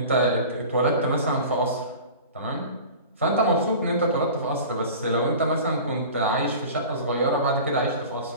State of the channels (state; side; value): inverted; both; correlation -0.39